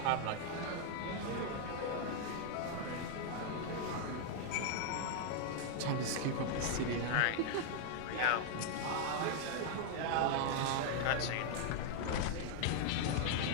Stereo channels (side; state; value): both; different; correlation 0.00